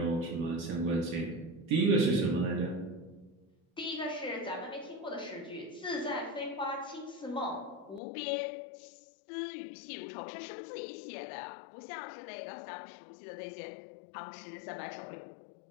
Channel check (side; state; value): right; drops out; at 8.0 s